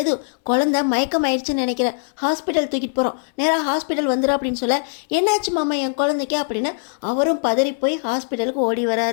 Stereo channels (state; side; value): silent; right; digital silence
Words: குழந்தை மயக்கம் ஆயிடுச்சுன்னு நினைக்கிறேன், ஹாஸ்பிட்டல் தூக்கிட்டு போகிறோம், நேராக ஹாஸ்பிட்டல் வந்துடும் அப்படின்னு சொல்ல, என்னாச்சு மாமா என் குழந்தைக்கு அப்படின்னு அவரும் பதறி போய் ஹாஸ்பிட்டலுக்கு ஓடி